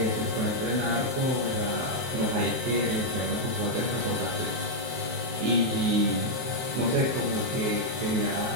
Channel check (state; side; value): late; left; 23 ms